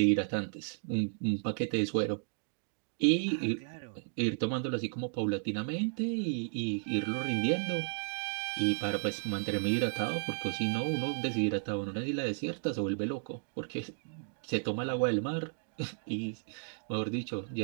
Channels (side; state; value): left; silent; digital silence